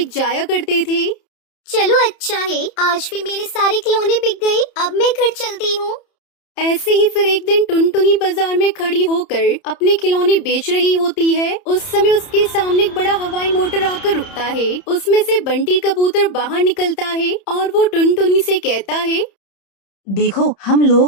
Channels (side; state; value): right; late; 30 ms